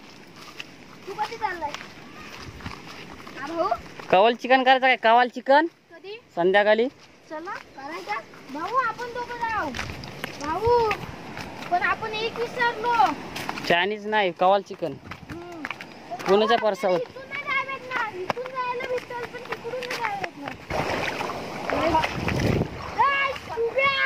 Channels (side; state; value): both; identical; correlation 1.00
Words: तू कधी चाललाय? भाऊ कवाल चिकन करायचं काय? कवाल चिकन कधी? संध्याकाळी. चला करायचा भाऊ, आपण दोघं जाऊ. भाऊ पण आपण एक विसरलो. चायनीज नाही, कवाल चिकन. कोणाच्या पर्सावर? इथून नाही जायला भेटणार. इथून जायला भेटल पण तिकडून नाही जायला भेटणार.